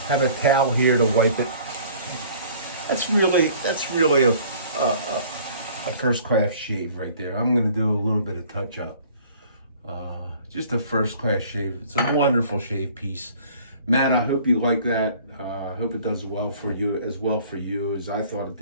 have a towel here to wipe it. That's really a first class shave right there. I'm gonna do a little bit of touch up. Just a first class shave. It's a wonderful shave piece. Matt, I hope you like that. I hope it does well for you as I thought it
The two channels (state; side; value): inverted; both; correlation -0.52